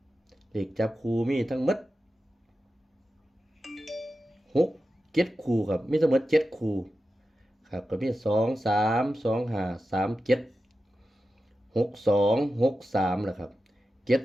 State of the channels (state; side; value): normal; both; correlation 0.92